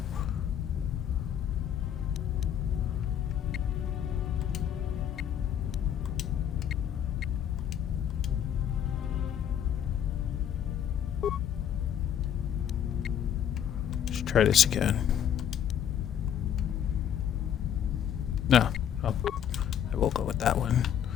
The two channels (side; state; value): right; quieter; 9.5 dB